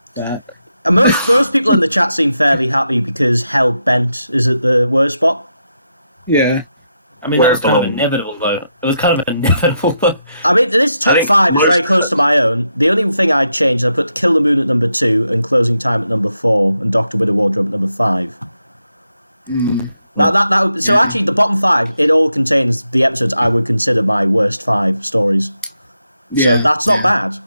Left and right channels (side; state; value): both; inverted; correlation -0.83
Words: that. And most people in the chat seem fairly happy because Hell Bent is at the worst spot. Yeah. I mean, that was kind of inevitable, though. It was kind of inevitable, though. I mean, this top 5 is very close to my own. The only thing I'd change is I put Kill the Moon at number 2 and Closing Time at number 4 and Doctor Widow Wardrobe at number 5. So actually, the bottom 5, it all contains the episodes I would consider my worst 5 stories. So that's not bad,